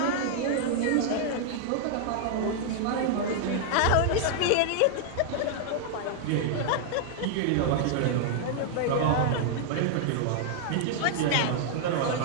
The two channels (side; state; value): both; different; correlation -0.01